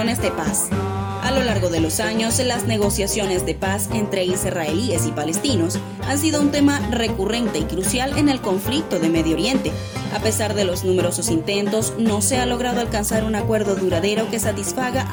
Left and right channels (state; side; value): identical; both; correlation 1.00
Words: de paz. A lo largo de los años, las negociaciones de paz entre israelíes y palestinos han sido un tema recurrente y crucial en el conflicto de Medio Oriente. A pesar de los numerosos intentos, no se ha logrado alcanzar un acuerdo duradero que satisfaga